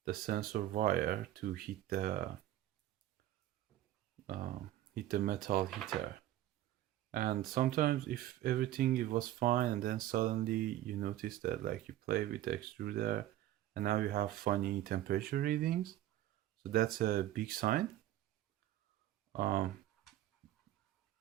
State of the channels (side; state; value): left; quieter; 13.8 dB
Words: sensor wire to hit the metal heater. And sometimes if everything was fine and then suddenly you notice that like you play with the extruder and now you have funny temperature readings, so that's a big sign